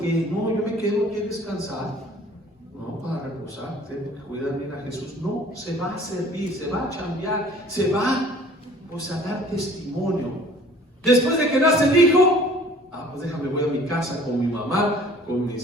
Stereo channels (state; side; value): normal; both; correlation 0.51